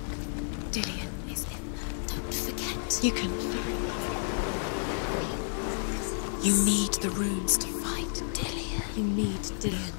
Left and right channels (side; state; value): right; silent; digital silence